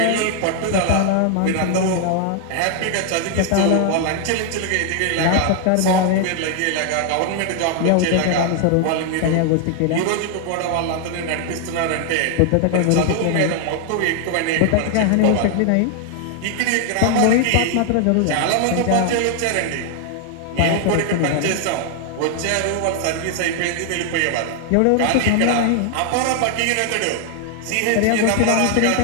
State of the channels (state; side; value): different; both; correlation 0.00